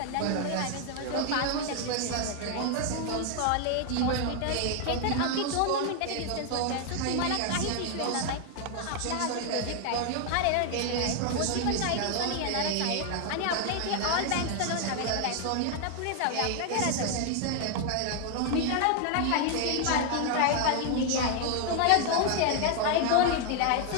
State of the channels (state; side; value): different; both; correlation 0.01